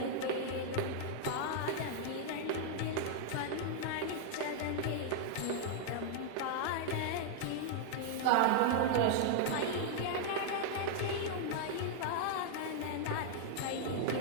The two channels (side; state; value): both; different; correlation -0.01